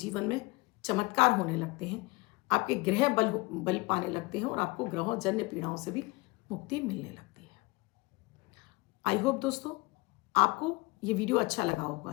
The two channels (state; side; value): quieter; right; 24.7 dB